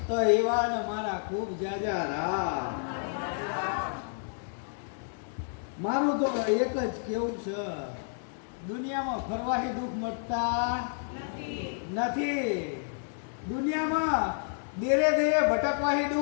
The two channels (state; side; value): silent; right; digital silence